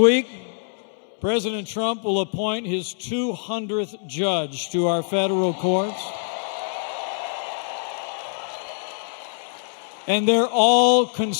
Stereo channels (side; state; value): right; silent; 63 dB below the other